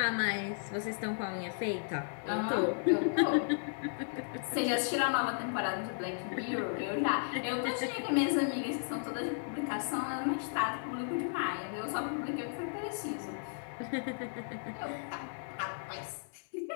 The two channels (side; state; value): right; silent; 55 dB below the other